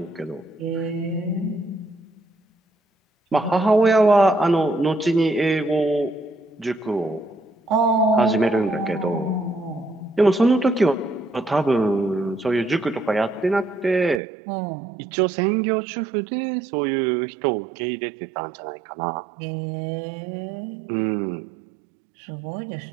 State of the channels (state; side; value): drops out; left; at 14.2 s